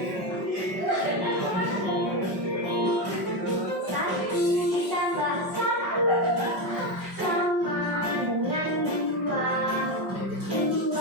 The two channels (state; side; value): late; left; 5.4 ms